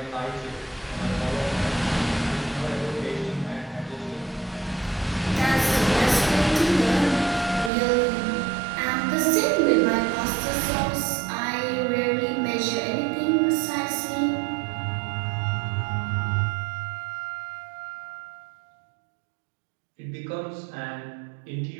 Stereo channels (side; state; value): left; drops out; at 7.7 s